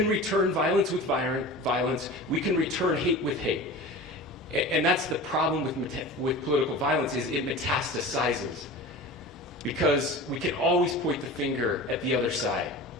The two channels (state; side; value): normal; both; correlation 0.35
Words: return violence with violence. We can return hate with hate. And that's the problem with political violence, is it metastasizes. Because we can always point the finger at the other side.